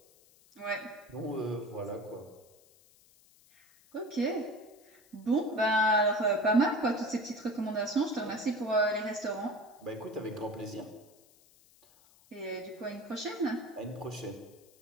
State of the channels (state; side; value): noise; left; hiss, 28 dB below the sound